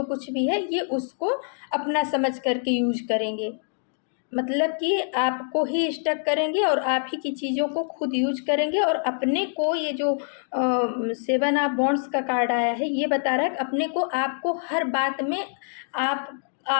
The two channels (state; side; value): silent; right; 62 dB below the other